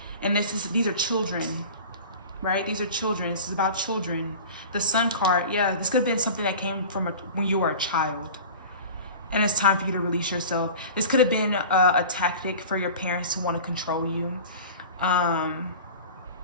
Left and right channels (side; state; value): both; inverted; correlation -0.37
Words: And these are children, right? These are children. This is about children. The Sun card, yeah, this could have been something that came from when you were a child. And it's time for you to release yourself. This could have been a tactic for your parents to want to control you.